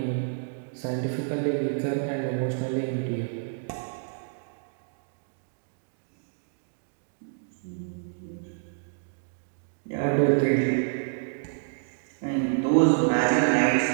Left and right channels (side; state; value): left; silent; digital silence